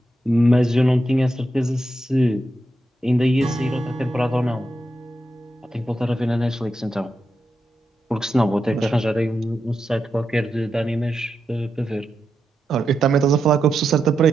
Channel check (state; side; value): normal; both; correlation 0.86